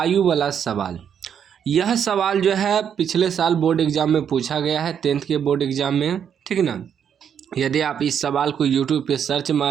वाला सवाल। यह सवाल जो है पिछले साल बोर्ड एग्जाम में पूछा गया है, 10th के बोर्ड एग्जाम में। ठीक है ना। यदि आप इस सवाल को यूट्यूब पे सर्च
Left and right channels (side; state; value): left; quieter; 8.2 dB